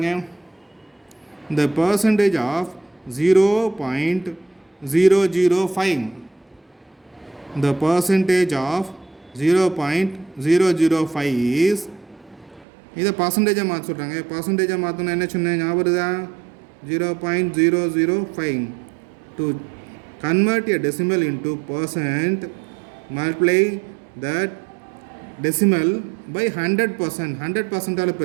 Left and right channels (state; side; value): drops out; left; at 12.7 s